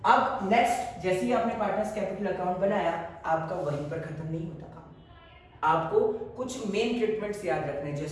अब नेक्स्ट, जैसे ही आपने पार्टनर्स कैपिटल अकाउंट बनाया, आपका वहीं पर खत्म नहीं होता काम। आपको कुछ मेन ट्रीटमेंट्स याद रखने,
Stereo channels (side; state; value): both; identical; correlation 1.00